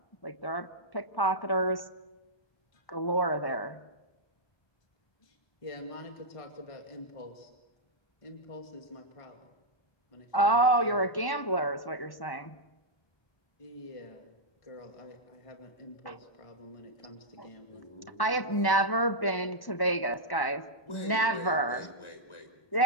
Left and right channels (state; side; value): late; right; 1.1 ms